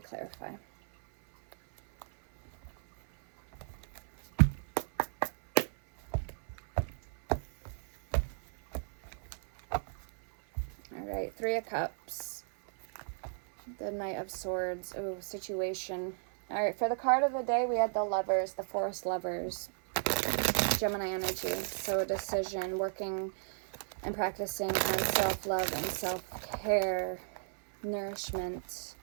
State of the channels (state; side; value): silent; left; 55 dB below the other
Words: Alright, 3 of Cups. The Knight of Swords. Oh, situation. Alright, for the card of the day, we had the Lovers, the Forest Lovers. Gemini energy. So a decision, working and practicing on self-love and self-care, nourishment.